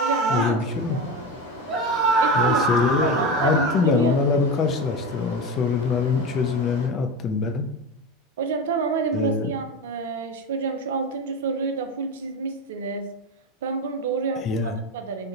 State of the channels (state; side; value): normal; both; correlation 0.22